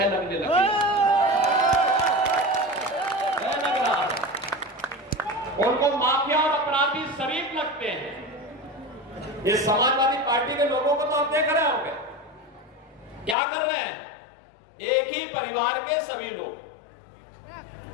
लगने लगा, भय लग रहा है, उनको माफिया और अपराधी शरीफ लगते हैं। ये समाजवादी पार्टी के लोगों को तो आप देख रहे होंगे क्या कर रहे हैं। एक ही परिवार के सभी लोग,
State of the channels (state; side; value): drops out; right; at 13.4 s